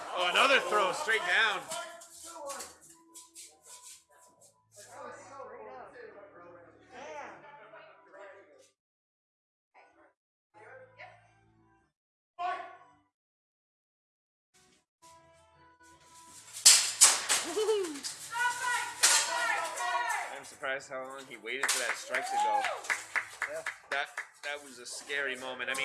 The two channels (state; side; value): identical; both; correlation 1.00